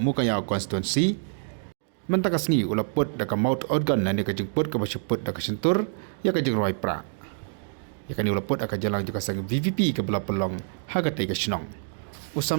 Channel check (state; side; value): silent; left; digital silence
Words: constituency mentakasngi ula put da ka mouth organ na ni ka jingput ka basiput da ka sentur ya ka jingroi pra ya ka ni ula put aka jalang juga sang VVP ka bela pelong haga tai ka snong